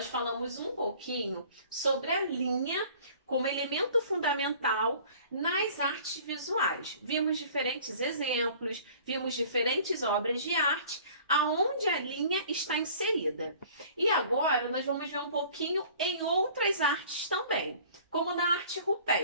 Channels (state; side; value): inverted; both; correlation -0.50